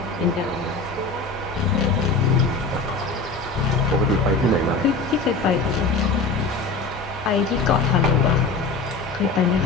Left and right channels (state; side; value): quieter; right; 3.9 dB